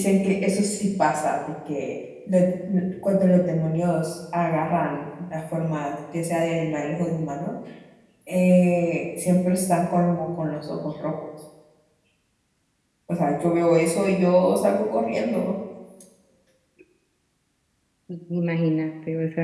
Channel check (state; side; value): identical; both; correlation 1.00